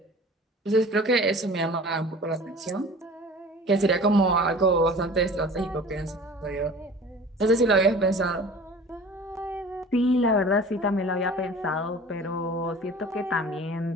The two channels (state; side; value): normal; both; correlation 0.42